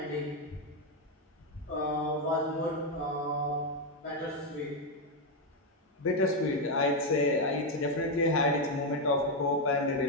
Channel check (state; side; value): normal; both; correlation 0.04